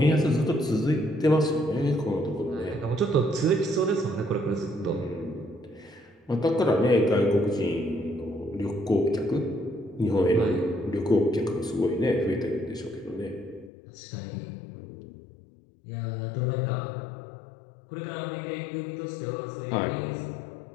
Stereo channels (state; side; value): drops out; right; at 13.7 s